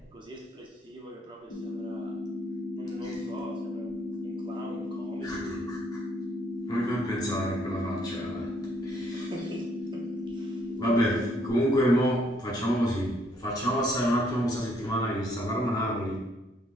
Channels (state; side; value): normal; both; correlation 0.68